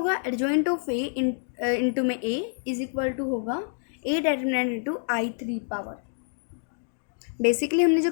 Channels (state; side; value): silent; right; digital silence